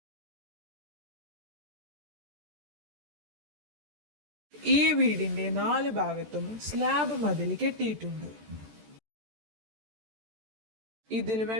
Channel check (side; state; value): left; late; 14 ms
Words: ഈ വീടിന്റെ 4 ഭാഗത്തും സ്ലാബ് മതിൽ കെട്ടിയിട്ടുണ്ട്. ഇതിൽ